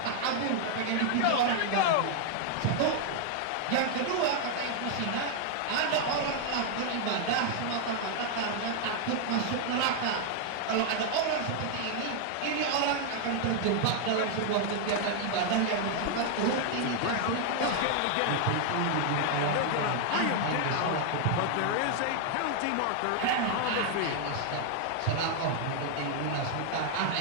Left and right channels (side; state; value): both; different; correlation 0.00